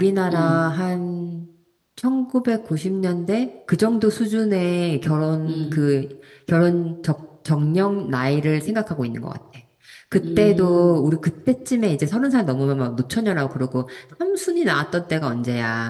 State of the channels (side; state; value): both; identical; correlation 1.00